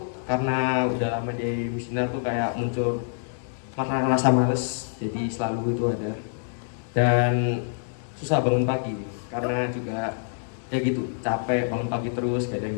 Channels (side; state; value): right; silent; digital silence